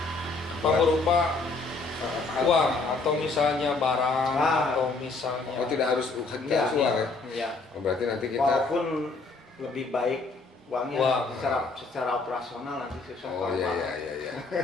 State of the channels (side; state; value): right; quieter; 3.8 dB